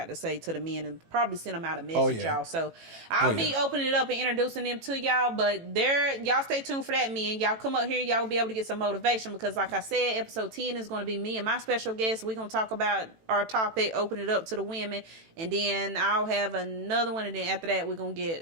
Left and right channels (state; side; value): late; left; 18 ms